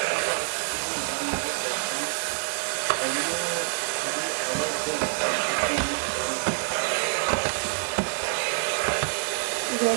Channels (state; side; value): silent; left; digital silence